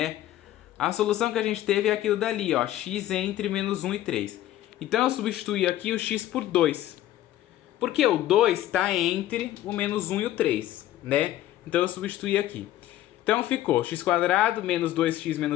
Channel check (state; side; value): quieter; right; 13.7 dB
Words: A solução que a gente teve é aquilo dali, ó, x entre menos 1 e 3. Então eu substituí aqui o x por 2. Porque o 2 está entre o menos 1 e o 3, né? Então eu substituí aqui. Então ficou x² menos 2x